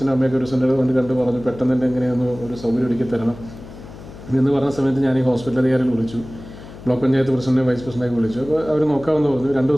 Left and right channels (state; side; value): noise; left; hum, 16 dB below the sound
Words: അമ്മയൊക്കെ ഒരു സെൻ്റർ കൊണ്ട് കണ്ടു പറഞ്ഞു, പെട്ടെന്ന് തന്നെ എങ്ങനെയൊന്ന് ഒരു സൗകര്യം ഒരുക്കി തരണം എന്ന് പറഞ്ഞ സമയത്ത് ഞാൻ ഈ ഹോസ്പിറ്റൽ അധികാരികൾ വിളിച്ചു, ബ്ലോക്ക് പഞ്ചായത്ത് പ്രസിഡന്റ് വൈസ് പ്രസിഡൻ്റൊക്കെ വിളിച്ചു. അപ്പോൾ അവർ നോക്കാമെന്ന് പറഞ്ഞു. 2